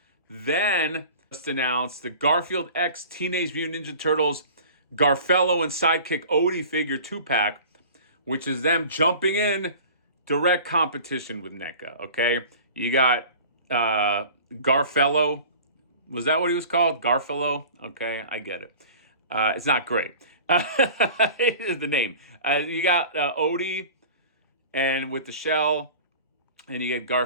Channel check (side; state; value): both; inverted; correlation -0.41